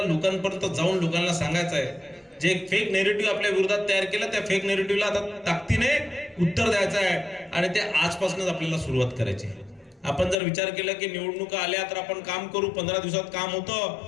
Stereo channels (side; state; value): right; drops out; at 10.4 s